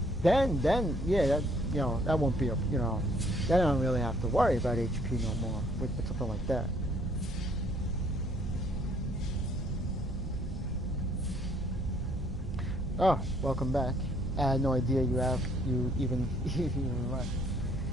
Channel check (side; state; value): right; noise; hum, 10 dB below the sound